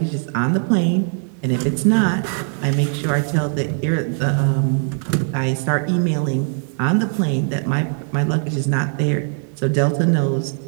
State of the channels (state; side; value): silent; left; 55 dB below the other